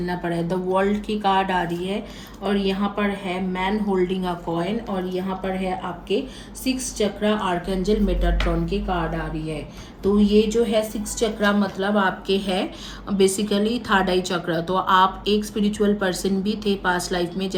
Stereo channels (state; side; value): identical; both; correlation 1.00